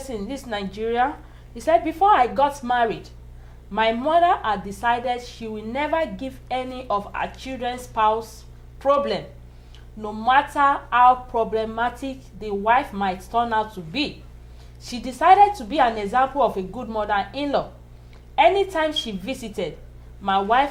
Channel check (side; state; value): both; identical; correlation 1.00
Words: this Nigeria, he said, before I got married, my mother had decided she will never give any of her children's spouse problem, no matter how problematic the wife might turn out to be. She decided to be an example of a good mother-in-law. Anytime she visited, my